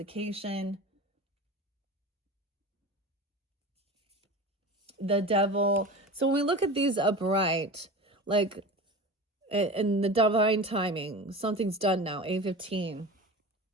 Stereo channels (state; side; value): normal; both; correlation 0.32